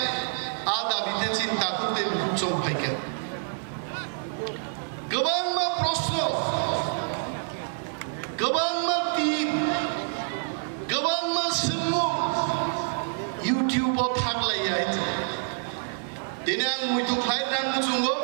आ दाबिते चिंता करते बुचम फायके गोबां प्रश्न गोबां टीम गोबां सोंमु यूट्यूबाव थागलायो दिनै आं मैथु खायनांगौ जोङो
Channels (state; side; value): silent; left; digital silence